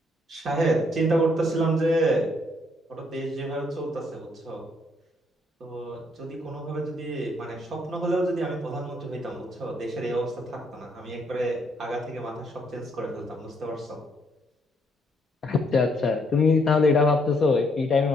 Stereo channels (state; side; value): normal; both; correlation 0.71